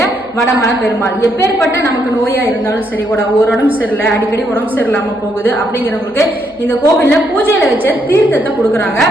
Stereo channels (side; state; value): right; noise; hum, 29 dB below the sound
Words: வடமலை பெருமாள். எப்பேற்பட்ட நமக்கு நோயா இருந்தாலும் சரி, ஒரு உடம்பு சரியில்லை, அடிக்கடி உடம்பு சரியில்லாம போகுது அப்படிங்கிறவங்களுக்கு இந்த கோவில்ல பூஜையில வச்ச தீர்த்தத்தை கொடுக்குறாங்க.